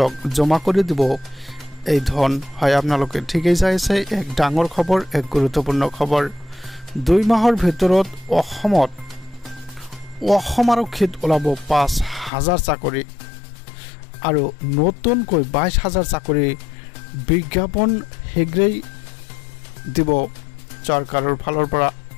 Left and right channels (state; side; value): drops out; right; at 12.3 s